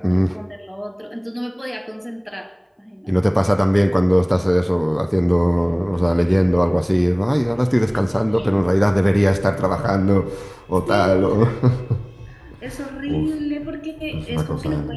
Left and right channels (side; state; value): both; identical; correlation 1.00